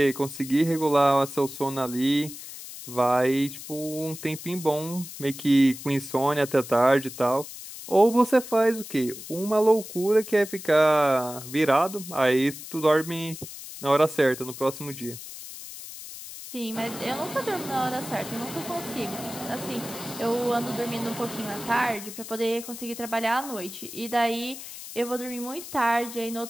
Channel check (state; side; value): noise; left; hiss, 12 dB below the sound